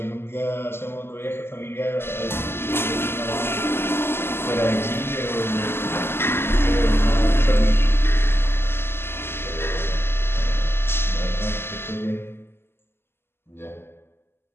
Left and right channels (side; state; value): right; late; 0.12 ms